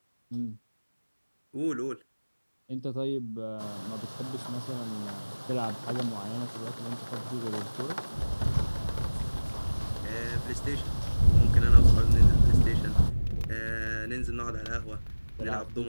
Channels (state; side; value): inverted; both; correlation -1.00